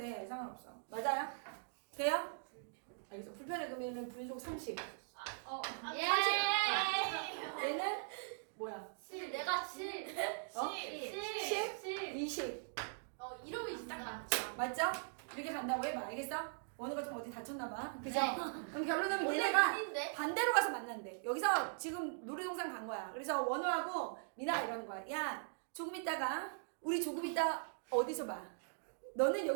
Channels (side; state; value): left; silent; digital silence